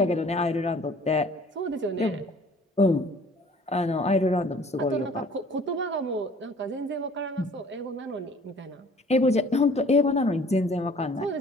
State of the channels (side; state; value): both; normal; correlation 0.52